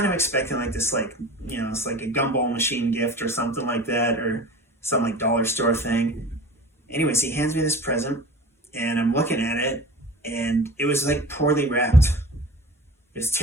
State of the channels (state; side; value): normal; both; correlation 0.38